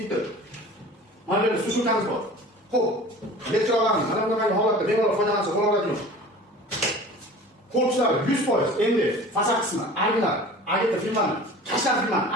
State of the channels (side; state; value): both; normal; correlation 0.41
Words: Mana bu sushulkamiz bor. Xo'p, elektrolarni mana bunday holatda bemalol foydalansa bo'laveradigan. Korpuslar 100%. Endi fasad qismi, arglar, agita filmani, tashlar filmani,